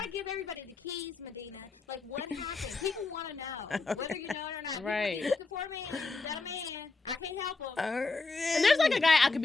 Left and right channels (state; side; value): quieter; right; 3.8 dB